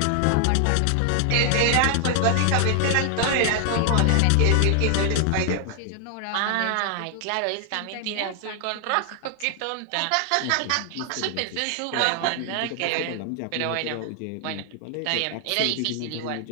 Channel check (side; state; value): both; different; correlation 0.00